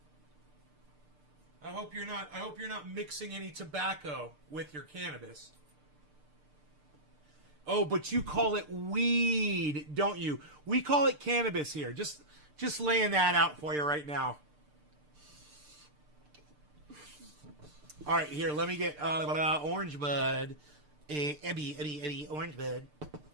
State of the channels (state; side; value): late; left; 6.7 ms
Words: I hope you're not mixing any tobacco with your cannabis. Oh, but you call it weed, don't you? We call it cannabis here. Just laying that out for you right now. All right, here, let me get orange bud. Eddie, orange bud.